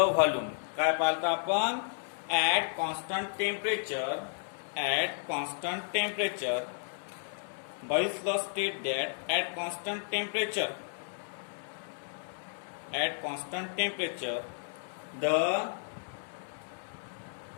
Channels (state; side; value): silent; right; 56 dB below the other